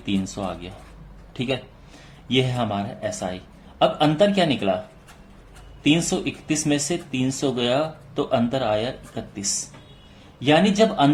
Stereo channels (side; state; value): both; identical; correlation 1.00